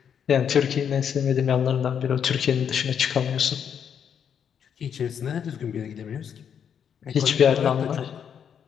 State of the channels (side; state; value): right; quieter; 8.0 dB